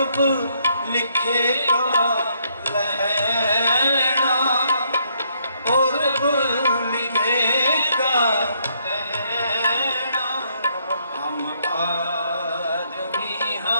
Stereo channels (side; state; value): both; inverted; correlation -0.72